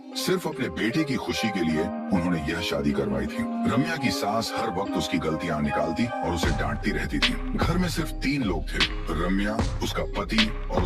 सिर्फ अपने बेटे की खुशी के लिए उन्होंने यह शादी करवाई थी। रम्या की सास हर वक्त उसकी गलतियां निकालती और उसे डांटती रहती थी। घर में सिर्फ 3 लोग थे, रम्या, उसका पति और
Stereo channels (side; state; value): both; identical; correlation 1.00